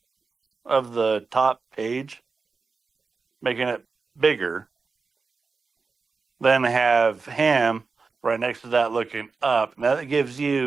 of the top page, making it bigger. Then have him right next to that looking up. Now that gives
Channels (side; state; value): left; quieter; 4.5 dB